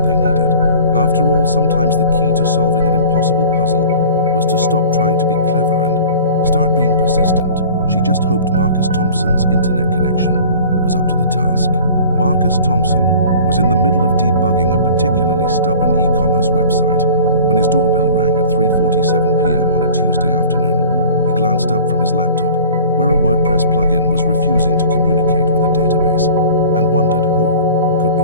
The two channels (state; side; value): inverted; both; correlation -0.43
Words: they needed. After all, sometimes the key to solving an impossible puzzle was to stop trying to be clever and start being persistent. She just hoped Marcus Thompson's internet connection was up to the task. Marcus Thompson was in the middle of debugging a particularly stubborn e-commerce website when his doorbell rang at 3:47 p.m. on a Tuesday afternoon. He glanced up from his laptop, where a WordPress plugin was refusing to communicate with a database, and wondered who could